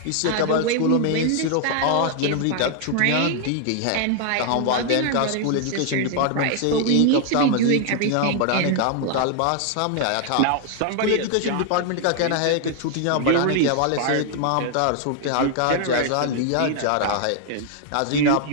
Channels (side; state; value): both; different; correlation 0.00